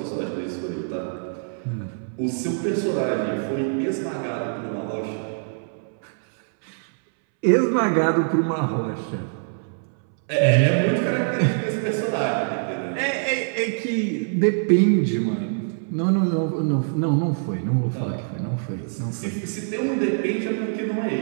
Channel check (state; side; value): silent; left; 63 dB below the other